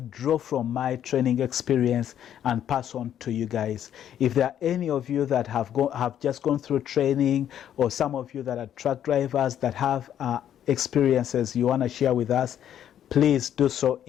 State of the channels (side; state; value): right; quieter; 10.3 dB